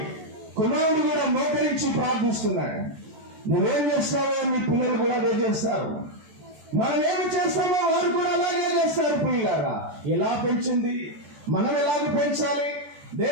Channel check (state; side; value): late; left; 14 ms